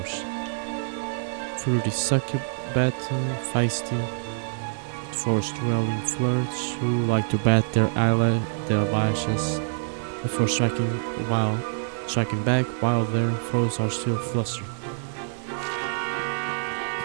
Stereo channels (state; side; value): silent; left; digital silence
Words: Fruity succubat, feisty, forced dwelling flirts who like to bat their eyelashes before striking back while their foes are still flustered.